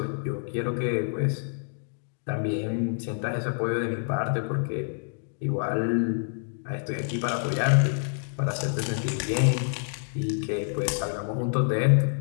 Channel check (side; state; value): right; silent; digital silence